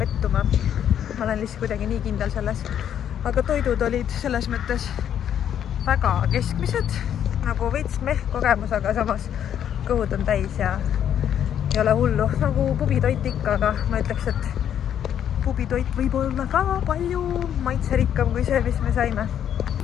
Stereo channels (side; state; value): right; quieter; 9.6 dB